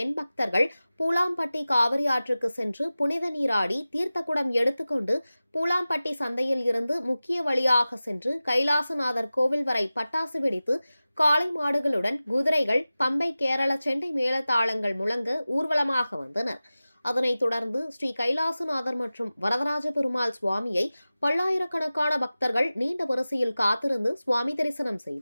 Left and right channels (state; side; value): inverted; both; correlation -0.96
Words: பக்தர்கள் பூலாம்பட்டி காவிரி ஆற்றுக்கு சென்று புனித நீராடி தீர்த்தக்குடம் எடுத்துக்கொண்டு பூலாம்பட்டி சந்தையில் இருந்து முக்கிய வழியாக சென்று கைலாசநாதர் கோவில் வரை பட்டாசு வெடித்து காளை மாடுகளுடன் குதிரைகள், பம்பை, கேரள செண்டை மேளதாளங்கள் முழங்க ஊர்வலமாக வந்தனர். அதனைத் தொடர்ந்து ஸ்ரீ கைலாசநாதர் மற்றும் வரதராஜ பெருமாள் சுவாமியை பல்லாயிரக்கணக்கான பக்தர்கள் நீண்ட வரிசையில் காத்திருந்து சுவாமி தரிசனம்